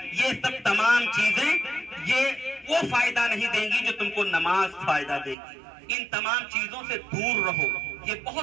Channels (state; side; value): drops out; left; at 5.4 s